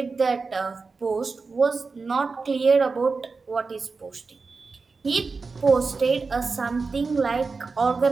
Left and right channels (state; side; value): quieter; left; 4.4 dB